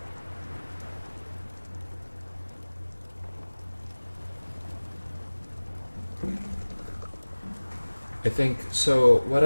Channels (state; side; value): inverted; both; correlation -1.00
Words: I think, so